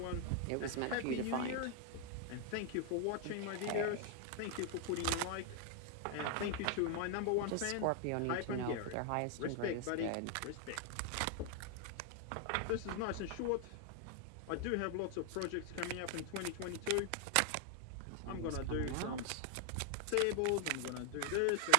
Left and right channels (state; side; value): different; both; correlation 0.00